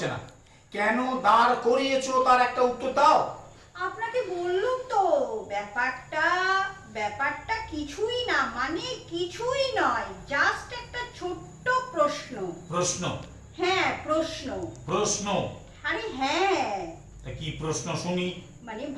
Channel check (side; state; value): both; identical; correlation 1.00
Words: না। কেন দাঁড় করিয়েছো তার একটা উত্তর দাও। আপনাকে বললুম তো, ব্যাপারটা কিছুই না, মানে কিছুই নয়, জাস্ট একটা ছোট্ট প্রশ্ন। প্রশ্ন? হ্যাঁ প্রশ্ন। প্রশ্ন? আরে হ্যাঁ। তা কি প্রশ্ন শুনি? মানে